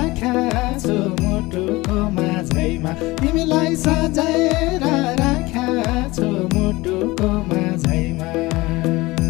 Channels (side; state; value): right; quieter; 20.9 dB